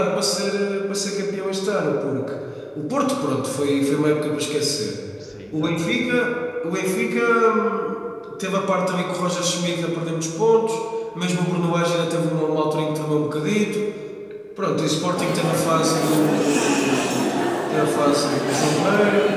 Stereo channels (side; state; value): both; identical; correlation 1.00